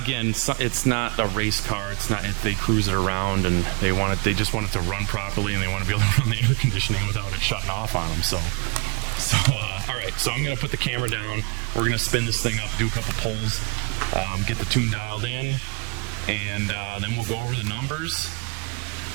it's not a race car. It's not. They cruise it around, and they just want it to run properly, and they want to be able to run the air conditioning without it shutting off on them. So all right. So I'm gonna put the camera down. We're gonna spin this thing up, do a couple pulls, get the tune dialed in, and then we'll go over the numbers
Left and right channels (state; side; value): quieter; left; 33.0 dB